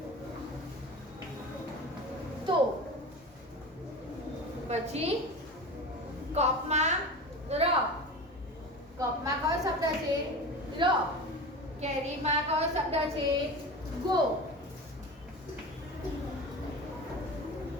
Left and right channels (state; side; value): normal; both; correlation 0.30